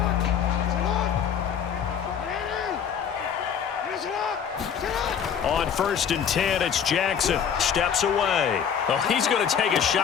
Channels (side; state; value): right; quieter; 7.9 dB